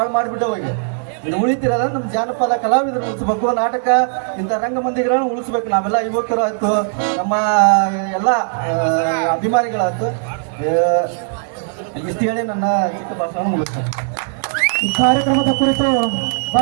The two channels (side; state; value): left; silent; 56 dB below the other